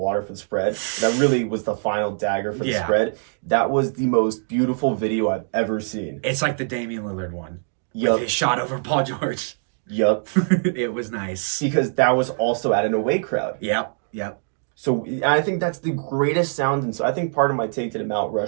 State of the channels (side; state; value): left; silent; digital silence